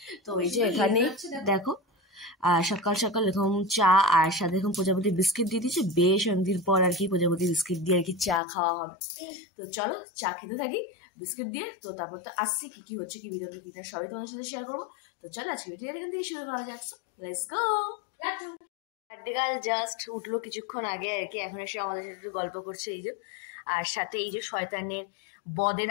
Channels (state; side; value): drops out; right; at 8.4 s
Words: তো এই যে এখানে দেখো সকাল সকাল এরকম চা আর সাথে এরকম প্রজাপতি বিস্কিট দিয়ে দিয়েছে। বেশ অনেকদিন পর আর কি প্রজাপতি বিস্কিট দিয়ে আর কি চা খাওয়া হবে। তো চলো চা খেতে থাকি বিস্কিট দিয়ে। তো তারপর তো আসছি কি কি হচ্ছে, কি ভিডিওতে কি না সবই তোমার সাথে শেয়ার করবো। তো চলো আজকে ভিডিও এখান থেকে শুরু করা যাচ্ছে, let's go. Birthday girl just উঠলো কিছুক্ষণ আগে আর কি, এখন এসে আমাদের সাথে একটু গল্প করছে এই যে। আর সাথে এই যে শয়তানের বদের